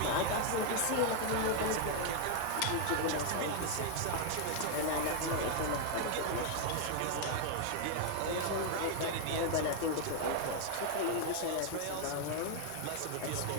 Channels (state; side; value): different; both; correlation 0.00